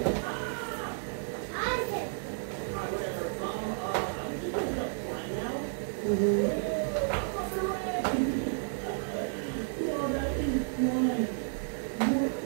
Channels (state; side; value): silent; left; 55 dB below the other